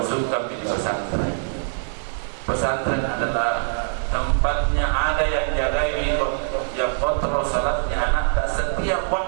di pesantren. Pesantren adalah tempatnya ada yang jaga yang kontrol salatnya anak tak setiap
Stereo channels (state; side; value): silent; left; 60 dB below the other